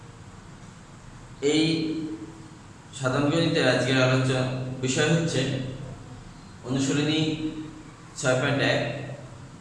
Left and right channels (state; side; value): identical; both; correlation 1.00